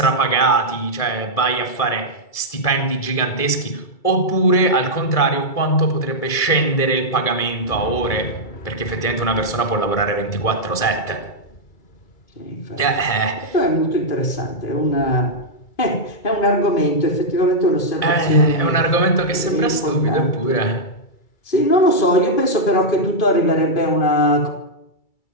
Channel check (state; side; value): late; right; 2.3 ms